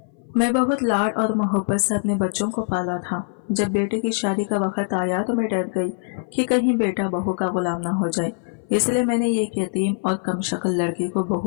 मैं बहुत लाड और मोहब्बत से अपने बच्चों को पाला था। जब बेटे की शादी का वक्त आया तो मैं डर गई कि कहीं बेटा बहू का गुलाम ना हो जाए। इसलिए मैंने एक यतीम और कम शक्ल लड़की को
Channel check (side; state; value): right; silent; 59 dB below the other